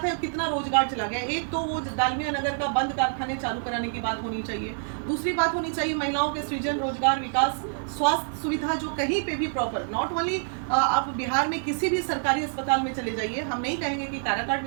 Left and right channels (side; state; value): left; silent; digital silence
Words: है कितना रोजगार चला गया। एक तो वो डालमिया नगर का बंद कारखाने चालू कराने की बात होनी चाहिए। दूसरी बात होनी चाहिए महिलाओं के सृजन, रोजगार, विकास, स्वास्थ्य सुविधा जो कहीं पे भी प्रॉपर, नॉट ओनली आप बिहार में किसी भी सरकारी अस्पताल में चले जाइए, हम नहीं कहेंगे कि काराकाट